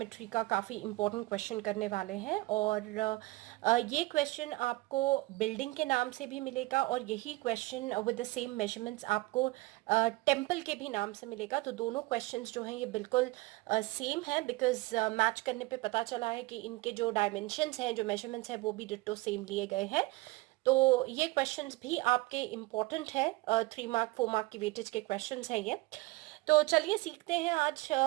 का काफ़ी इम्पोर्टेंट क्वेश्चन करने वाले हैं। और ये क्वेश्चन आपको बिल्डिंग के नाम से भी मिलेगा और यही question with the same measurements आपको टेम्पल के भी नाम से मिलेगा। तो दोनों क्वेश्चंस जो हैं ये बिल्कुल सेम है, बिकॉज मैच करने पे पता चला है कि इनके जो डायमेंशंस हैं, जो मेजरमेंट्स हैं, वो भी डिट्टो सेम लिए गए हैं। तो ये क्वेश्चंस भी आपके इम्पोर्टेंट है, 3 मार्क 4 मार्क की वेटेज के क्वेश्चंस हैं ये। तो चलिए सीखते हैं आज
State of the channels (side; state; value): left; quieter; 21.4 dB